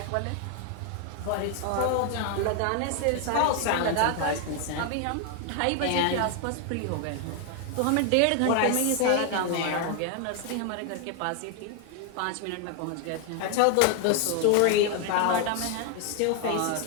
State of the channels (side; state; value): both; different; correlation 0.01